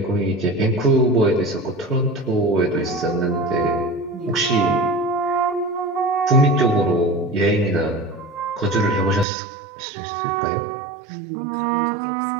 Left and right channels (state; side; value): drops out; left; at 9.2 s